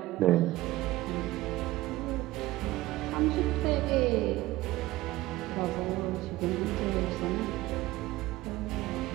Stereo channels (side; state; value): left; quieter; 17.8 dB